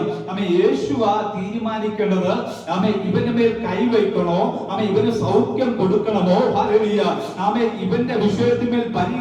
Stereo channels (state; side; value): identical; both; correlation 1.00